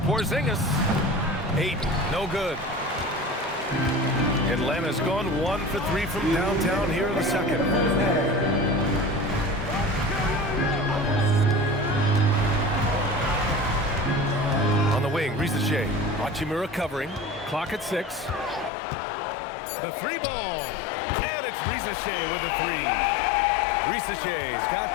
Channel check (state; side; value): drops out; right; at 18.7 s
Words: Ayton, no good. Atlanta's gone 1 for 3 from downtown here in the second. On the wing, Risacher. Hachimura covering. Clock at 6. The 3 ball. And it's Risacher with the 3. Risacher's got